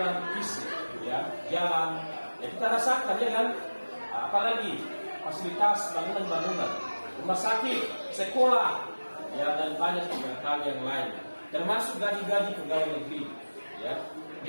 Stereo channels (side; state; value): both; inverted; correlation -1.00